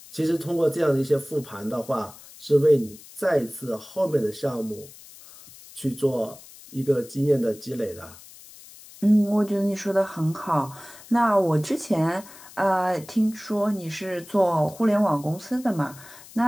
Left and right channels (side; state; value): left; noise; hiss, 20 dB below the sound